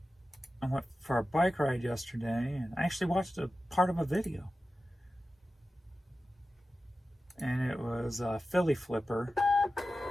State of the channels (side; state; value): both; normal; correlation 0.94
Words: I went for a bike ride yesterday, and I actually watched a part of a video. And it was a Philly flipper